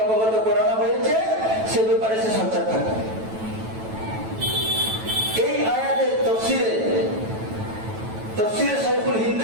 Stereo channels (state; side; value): late; left; 9.1 ms